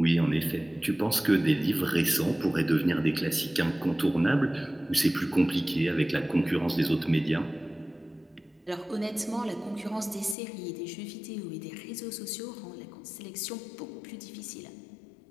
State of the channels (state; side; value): drops out; right; at 10.4 s